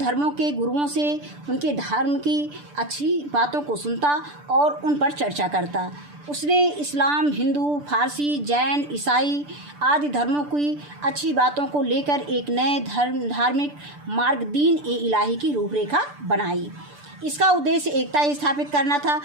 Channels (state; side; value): late; left; 6.8 ms